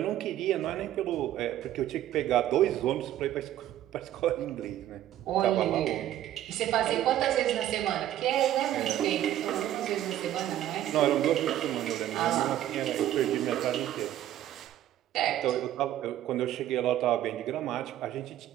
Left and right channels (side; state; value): left; quieter; 12.6 dB